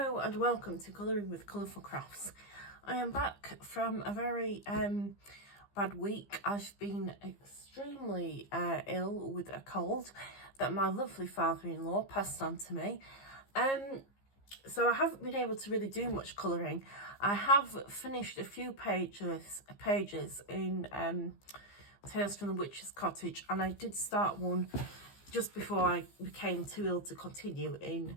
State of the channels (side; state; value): right; late; 15 ms